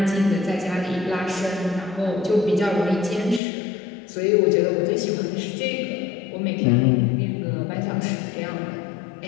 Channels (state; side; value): drops out; right; at 3.4 s